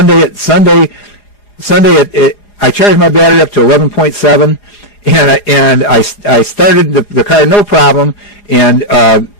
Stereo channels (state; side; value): late; right; 4.9 ms